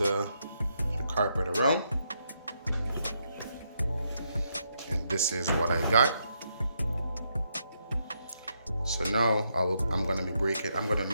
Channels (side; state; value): both; inverted; correlation -0.79